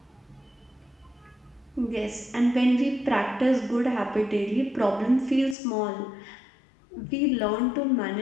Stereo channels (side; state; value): right; drops out; at 5.6 s